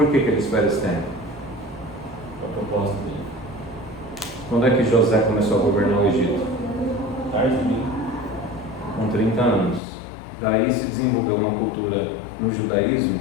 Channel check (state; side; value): drops out; right; at 9.8 s